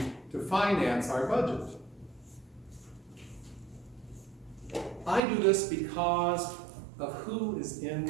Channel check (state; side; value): drops out; left; at 5.2 s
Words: to finance our budget. I do this because of who is